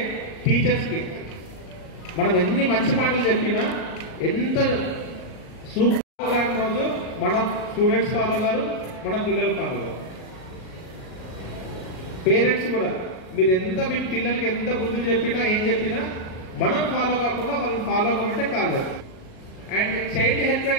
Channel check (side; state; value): right; late; 38 ms